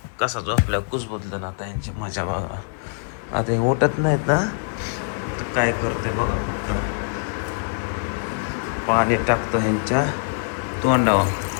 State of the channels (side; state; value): right; silent; 59 dB below the other